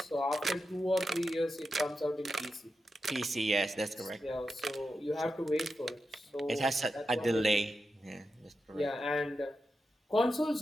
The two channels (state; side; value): normal; both; correlation 0.90